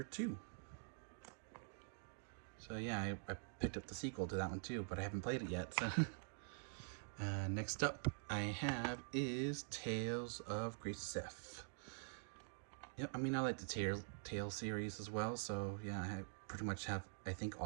2. So yeah, I picked up the sequel to that one too, but I haven't played it yet, so. Next up I have is Tales of Grace F. Yep, I mean, I like the Tales series as well, so yeah, I pretty much have, I think,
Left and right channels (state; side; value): silent; left; digital silence